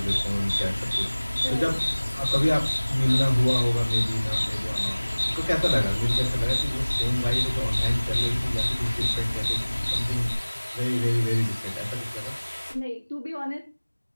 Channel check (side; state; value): both; inverted; correlation -1.00